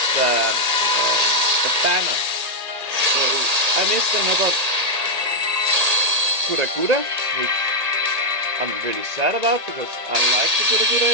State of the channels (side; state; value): left; late; 1.8 ms